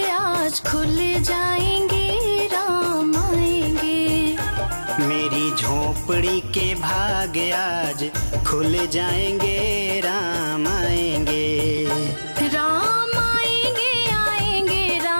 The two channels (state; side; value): inverted; both; correlation -1.00